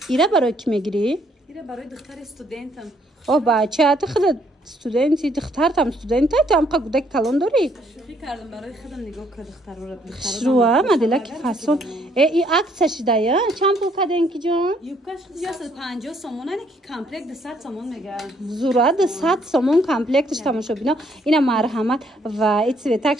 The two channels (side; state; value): both; normal; correlation 0.67